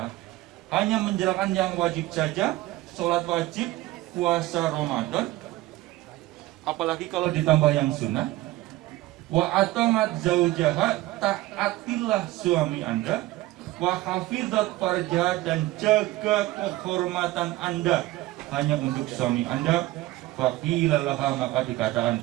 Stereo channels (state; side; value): quieter; left; 17.5 dB